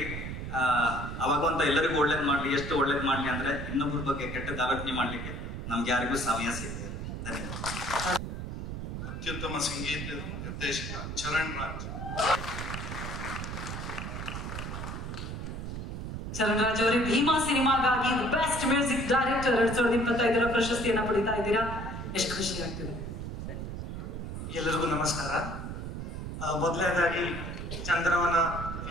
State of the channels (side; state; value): right; noise; rumble, 6 dB below the sound